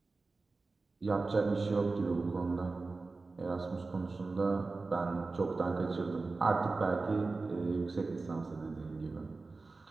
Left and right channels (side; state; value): left; quieter; 3.7 dB